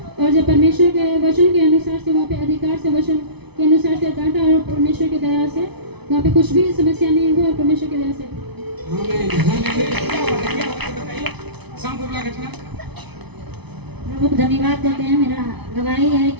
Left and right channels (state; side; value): late; left; 0.99 ms